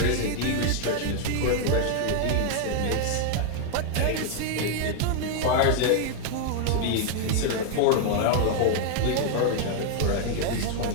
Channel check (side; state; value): both; different; correlation 0.00